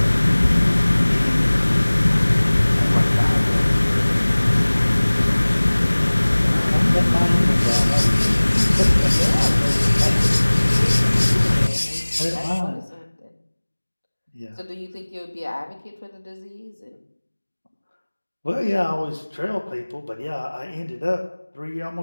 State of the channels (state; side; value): inverted; both; correlation -1.00